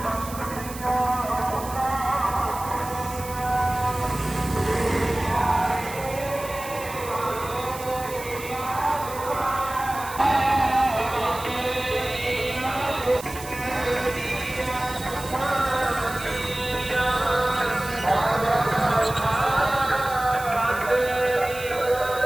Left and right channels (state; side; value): noise; right; hiss, 13 dB below the sound